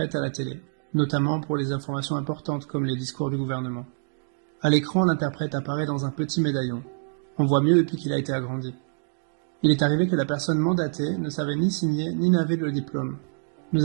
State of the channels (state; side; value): silent; left; digital silence